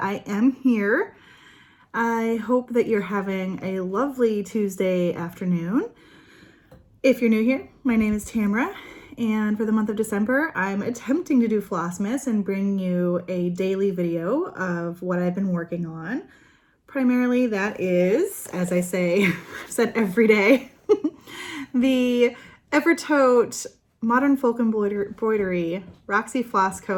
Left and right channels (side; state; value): both; identical; correlation 1.00